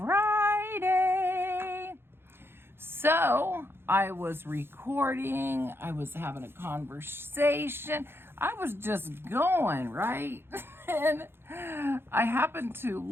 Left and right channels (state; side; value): late; left; 0.11 ms